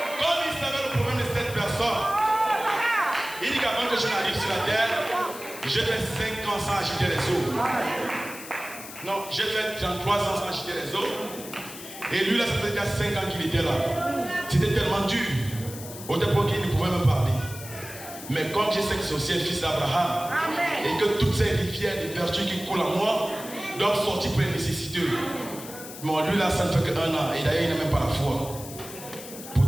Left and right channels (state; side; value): noise; left; hiss, 13 dB below the sound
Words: Comme il savait le problème de cette personne, il dit qu'avant que je n'arrive sur la terre, j'ai fait 5 ans sans agiter les eaux. Non, j'ai fait 33 ans sans agiter les eaux. Et lui là, ça faisait déjà 5 ans qu'il était là. C'était tellement dur. Au départ qu'il ne pouvait me parler. Mais comme je sais que c'est aussi un fils d'Abraham, et que toutes ces rivières de vertu qui coulent en moi, doivent sortir pour les nécessiteux. Bon, lui là, ça ne fait qu'un an, et d'ailleurs, il n'a même pas la foi.